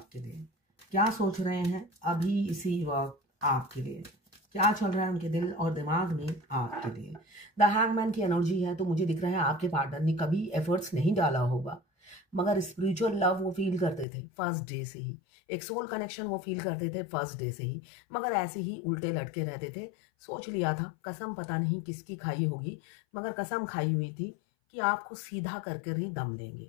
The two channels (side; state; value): right; drops out; at 14.1 s